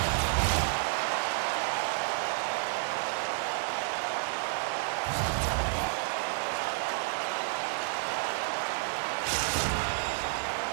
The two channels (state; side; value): silent; left; digital silence